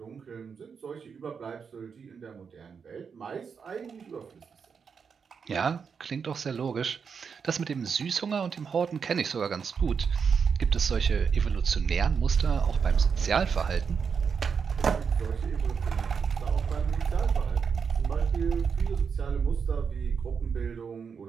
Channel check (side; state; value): left; quieter; 6.2 dB